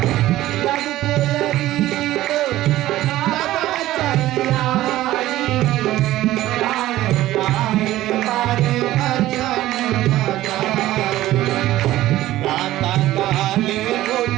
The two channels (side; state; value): left; quieter; 15.2 dB